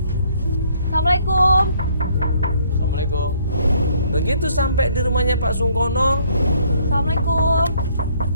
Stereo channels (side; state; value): both; inverted; correlation -0.64